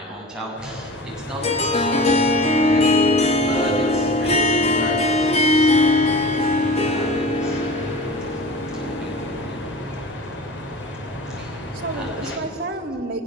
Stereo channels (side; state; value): both; normal; correlation 0.36